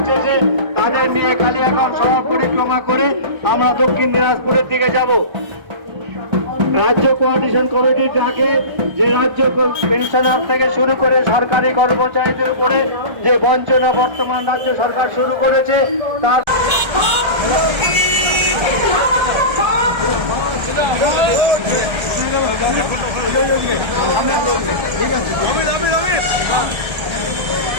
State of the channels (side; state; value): left; late; 1.3 ms